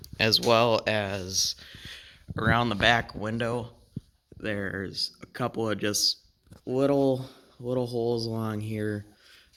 As well as around the back window, there's a couple of just little holes along here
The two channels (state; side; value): identical; both; correlation 1.00